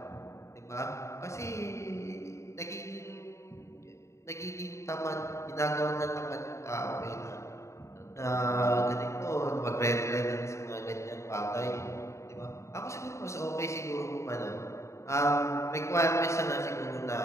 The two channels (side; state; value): right; late; 0.14 ms